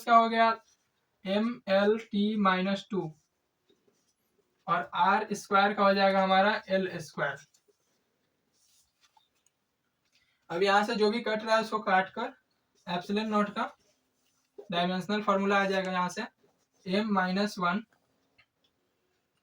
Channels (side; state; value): both; identical; correlation 1.00